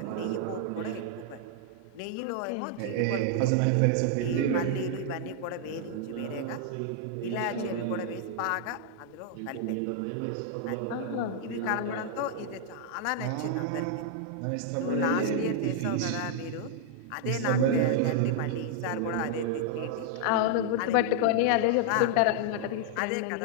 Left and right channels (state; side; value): different; both; correlation -0.01